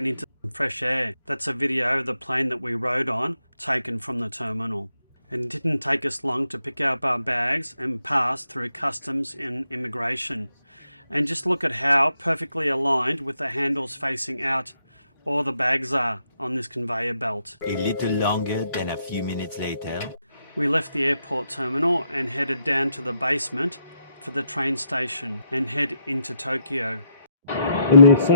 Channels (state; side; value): inverted; both; correlation -0.78